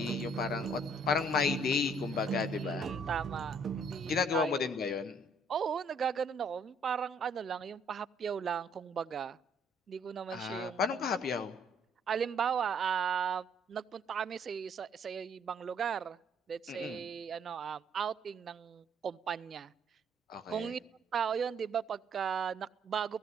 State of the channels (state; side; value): normal; both; correlation 0.64